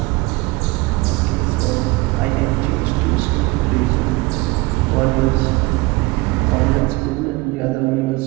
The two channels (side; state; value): left; quieter; 22.9 dB